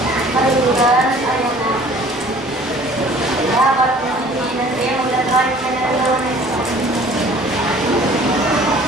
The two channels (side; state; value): both; normal; correlation 0.51